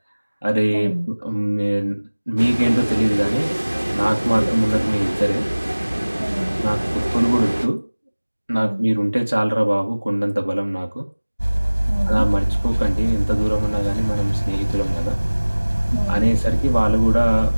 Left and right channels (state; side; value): inverted; both; correlation -1.00